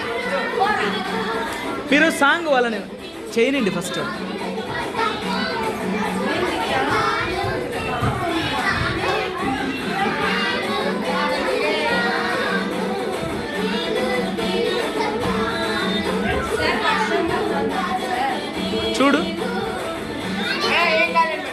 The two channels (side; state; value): both; identical; correlation 1.00